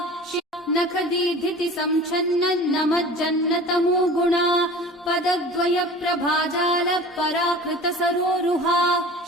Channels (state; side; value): normal; both; correlation 0.40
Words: नखदीधिति संच्छन्नन्नमज्जन्नतमो गुणा पदद्वय प्रभाजाल पराकृत सरोरुहा